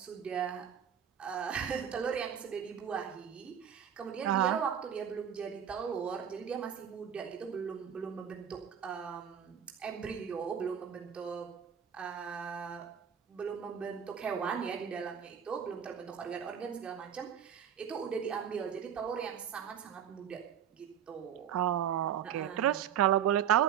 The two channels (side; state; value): left; quieter; 8.7 dB